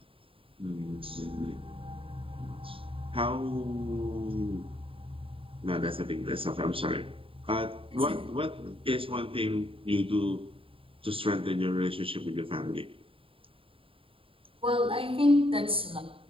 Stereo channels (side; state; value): left; late; 0.26 ms